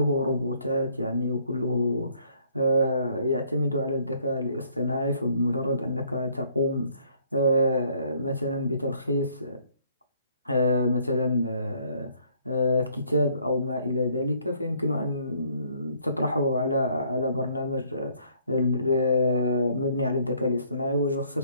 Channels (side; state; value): both; inverted; correlation -0.64